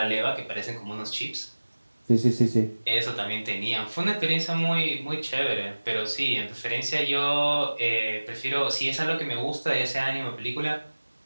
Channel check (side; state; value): both; inverted; correlation -1.00